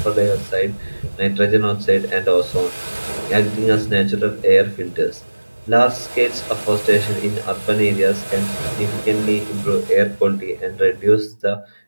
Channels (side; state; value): both; inverted; correlation -1.00